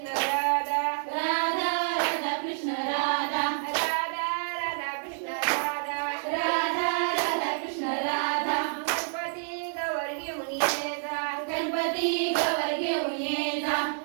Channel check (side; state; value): left; silent; digital silence